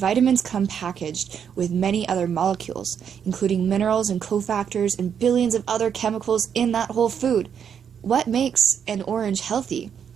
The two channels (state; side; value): quieter; left; 7.9 dB